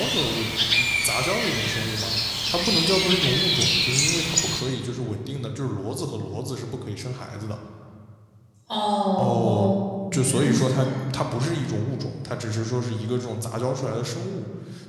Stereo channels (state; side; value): identical; both; correlation 1.00